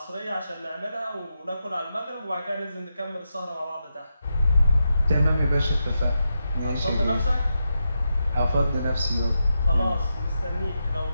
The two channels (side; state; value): both; inverted; correlation -0.86